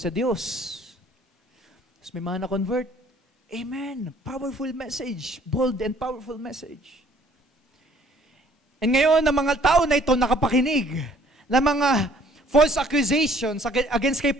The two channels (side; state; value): both; normal; correlation 0.59